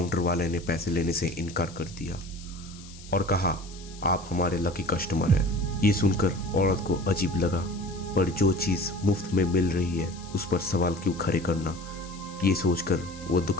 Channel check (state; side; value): noise; left; hiss, 19 dB below the sound